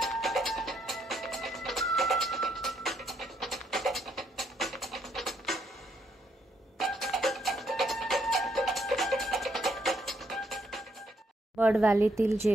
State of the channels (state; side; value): normal; both; correlation 0.73